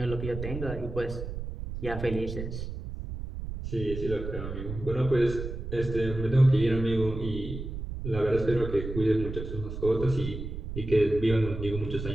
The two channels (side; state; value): right; noise; rumble, 7 dB below the sound